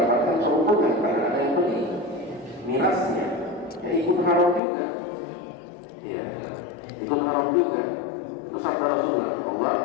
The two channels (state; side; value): drops out; right; at 4.6 s